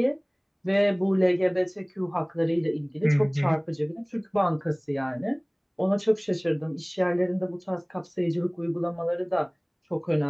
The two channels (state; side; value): identical; both; correlation 1.00